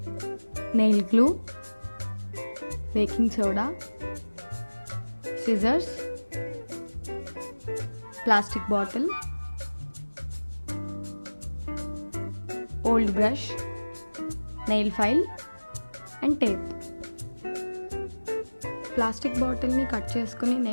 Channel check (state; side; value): inverted; both; correlation -1.00